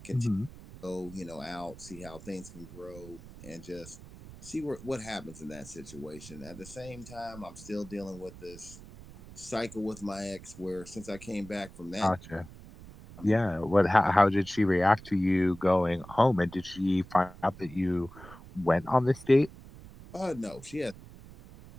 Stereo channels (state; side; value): noise; right; rumble, 17 dB below the sound